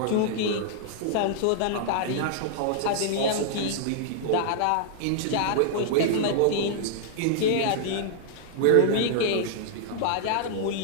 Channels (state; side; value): different; both; correlation -0.01